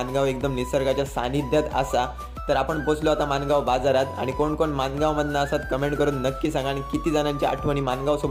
एकदम निसर्गाच्या सानिध्यात असा. तर आपण पोचलो आता मानगाव बाजारात. आणि कोण कोण मानगावमधनं असतात कमेंट करून नक्की सांगा, आणि किती जणांच्या आठवणी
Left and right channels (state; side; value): identical; both; correlation 1.00